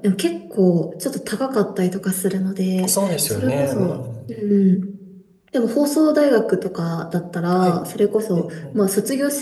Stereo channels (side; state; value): both; identical; correlation 1.00